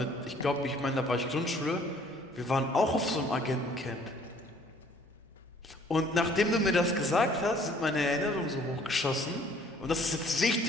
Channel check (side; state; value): both; normal; correlation 0.58